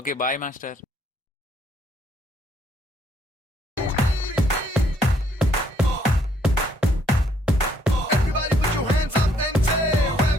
bye master. Everybody put your hands up and say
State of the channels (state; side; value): normal; both; correlation 0.67